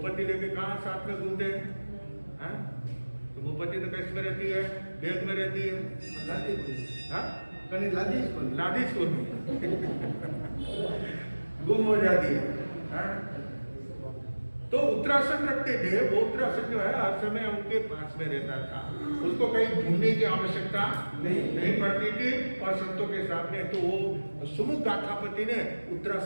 लेके कहाँ साथ में घूमते हैं? तो मुंहपत्ती तो कैसे में रहती है, बैग में रहती है, लादी स्कूल में गुम हो जाती है। तो उत्तरासन रखते थे, वो उत्तरासन जो है हर समय उनके पास में रहता था, उसको कहीं ढूंढने की आवश्यकता नहीं पड़ती थी। और संतों के सामने तो वो सुमुख गाथापति ने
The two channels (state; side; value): inverted; both; correlation -1.00